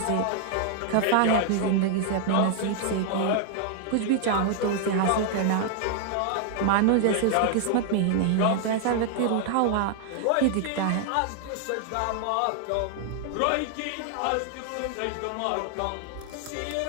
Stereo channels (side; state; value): both; different; correlation 0.00